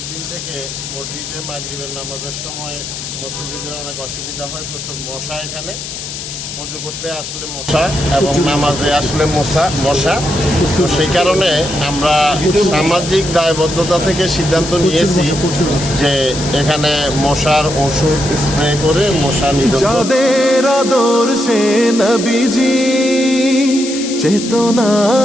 থেকে মসজিদে মাগরিবের নামাজের সময় মুসল্লিদের অনেক অসুবিধা হয়, প্রচুর মশা। এখানে পুজো করতে আসলে মশা এবং নামাজে আসলে মশা। তো সেই কারণে আমরা সামাজিক দায়বদ্ধতা থেকে সিদ্ধান্ত নিয়েছি যে এখানে মশার ওষুধ স্প্রে করে মশা নিধন। যাদের আদর্শে নবীজি চেতনা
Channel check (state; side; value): noise; left; hiss, 8 dB below the sound